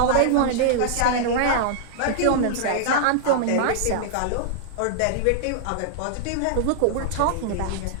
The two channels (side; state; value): both; different; correlation -0.01